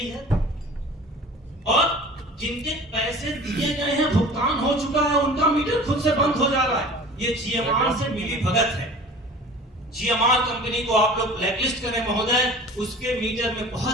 है? और जिनके पैसे दिए गए हैं, भुगतान हो चुका है, उनका मीटर खुद से बंद हो जा रहा है। ये जीएमआर से मिली भगत है। जीएमआर कंपनी को आप लोग ब्लैकलिस्ट करें महोदय, उसके मीटर में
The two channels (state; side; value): normal; both; correlation 0.42